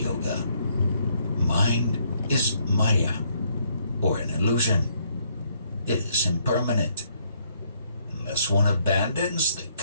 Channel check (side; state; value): both; inverted; correlation -0.69